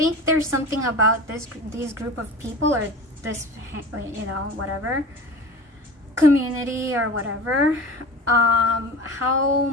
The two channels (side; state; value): both; normal; correlation 0.34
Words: there's something about these group of people, or this, you know, whatever, community or whatever, how